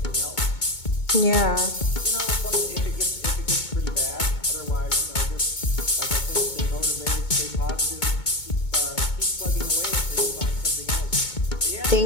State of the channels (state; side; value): late; right; 2.2 ms